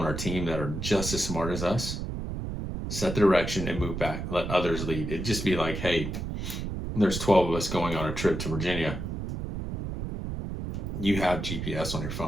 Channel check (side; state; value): right; noise; rumble, 5 dB below the sound